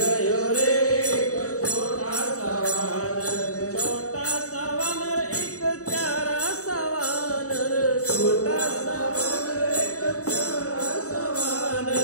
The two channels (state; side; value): late; right; 0.66 ms